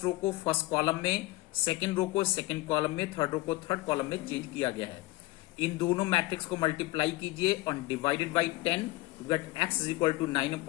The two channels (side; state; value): right; quieter; 19.6 dB